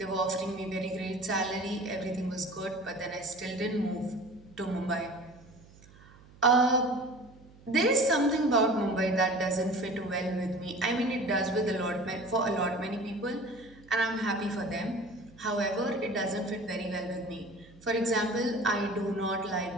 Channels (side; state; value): right; noise; hum, 24 dB below the sound